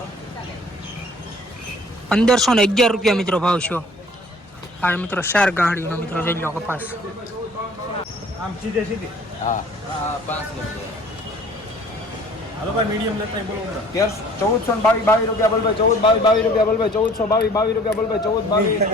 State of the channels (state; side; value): normal; both; correlation 0.52